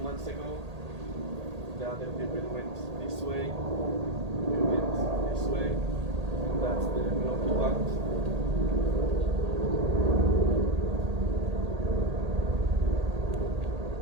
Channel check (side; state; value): left; late; 1.8 ms